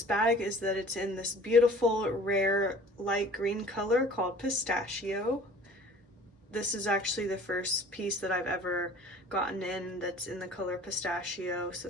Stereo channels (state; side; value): normal; both; correlation 0.48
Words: bag is that it's in this beautiful rare light green color called Pistachio. This is actually the first piece that I've ever gotten in that's in the color Pistachio, so